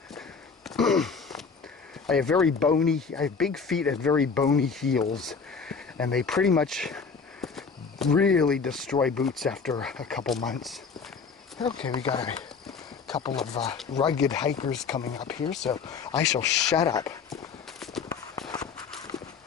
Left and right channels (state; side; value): quieter; right; 5.4 dB